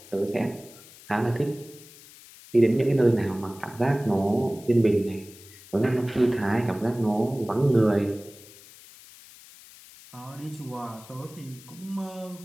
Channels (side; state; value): left; noise; hiss, 21 dB below the sound